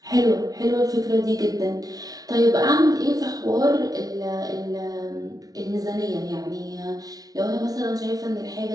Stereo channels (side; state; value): left; late; 0.18 ms